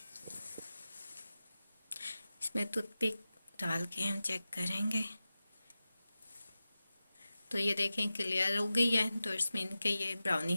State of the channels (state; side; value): inverted; both; correlation -0.94